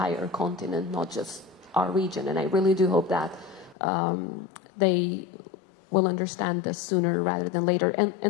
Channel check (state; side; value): drops out; right; at 3.8 s